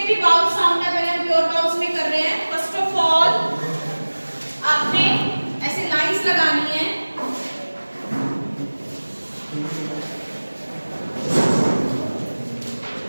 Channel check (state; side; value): inverted; both; correlation -1.00